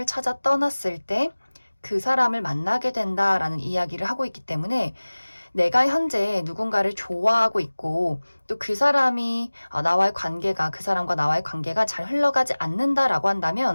찾아 떠났을 때 그 사람을 만나게 된다라는 이야기를 하고 있기 때문에 내가 현재 누군가를 좋아하고 있고 또 그 사람이 나와의 관계가 그 사람과 나와의 관계가 잘 흘러가지 않는다라고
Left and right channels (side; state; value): both; inverted; correlation -1.00